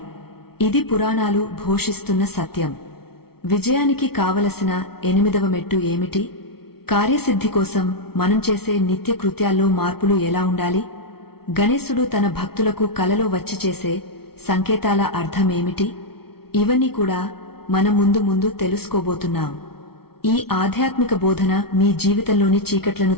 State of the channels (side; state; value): right; late; 0.95 ms